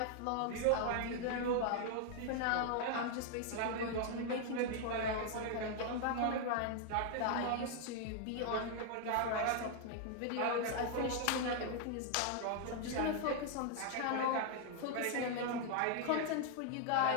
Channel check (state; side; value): different; both; correlation 0.00